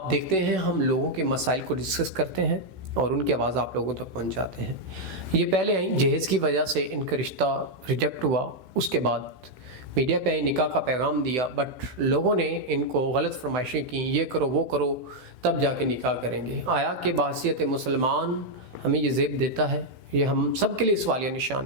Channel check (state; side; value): late; left; 16 ms